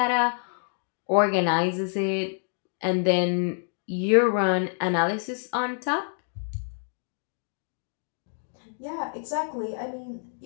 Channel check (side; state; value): right; silent; 60 dB below the other